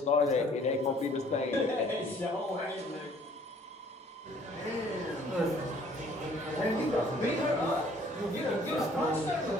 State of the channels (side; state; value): both; normal; correlation 0.57